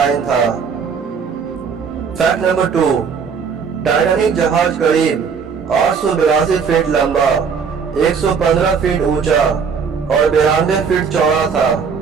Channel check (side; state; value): left; quieter; 6.1 dB